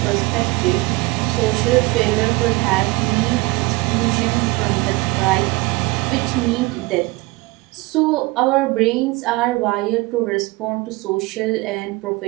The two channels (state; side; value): quieter; left; 23.0 dB